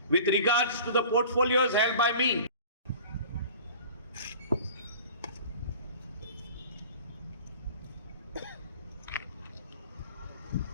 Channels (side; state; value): both; inverted; correlation -0.43